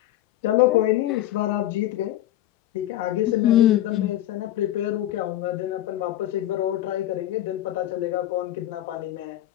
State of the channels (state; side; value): quieter; right; 13.6 dB